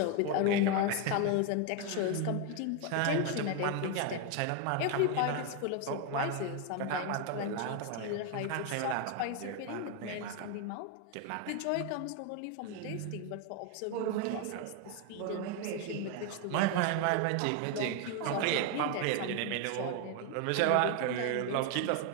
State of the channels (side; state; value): both; different; correlation 0.01